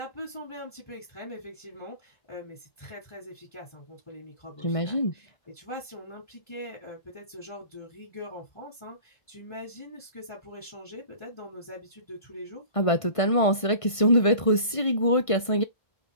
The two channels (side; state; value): right; late; 1.5 ms